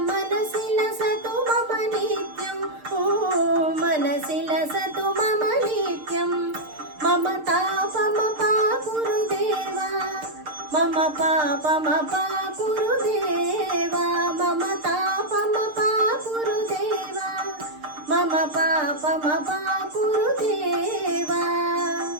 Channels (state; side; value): late; left; 6.6 ms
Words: मनसि लसतु मम नित्यम् मनसि लसतु मम नित्यम् मम तापमपाकुरुदेवा मम पापमपाकुरुदेवा मम तापमपाकुरुदेवा मम पापमपाकुरुदेवा